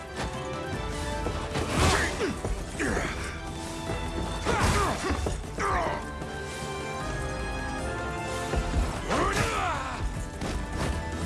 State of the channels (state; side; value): identical; both; correlation 1.00